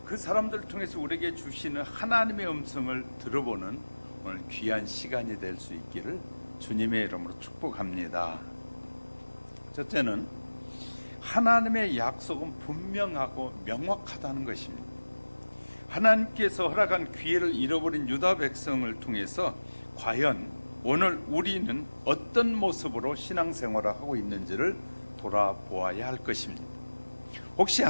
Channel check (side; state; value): both; inverted; correlation -1.00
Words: 그 사람들을 통해서 우리에게 주시는 하나님의 음성을 들어보는 오늘 귀한 시간이 될 수 있기를 주님의 이름으로 축복합니다. 첫째는 하나님의 약속은 분명하고 명확하다는 것입니다. 하나님께서 허락한 기회를 잃어버린 유다 백성을 통해서 과연 오늘 우리는 어떤 모습으로 신앙생활을 하고 있는지를 돌아보아야 할 것입니다. 혹시